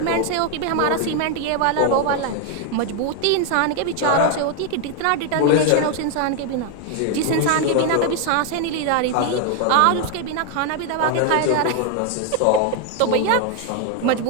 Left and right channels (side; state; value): both; different; correlation 0.01